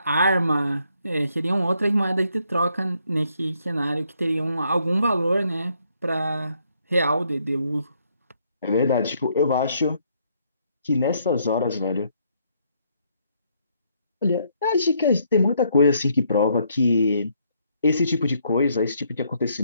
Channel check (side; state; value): both; inverted; correlation -0.71